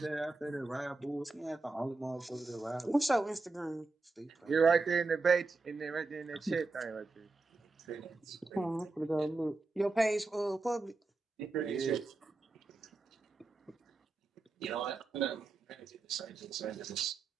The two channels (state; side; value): quieter; left; 3.6 dB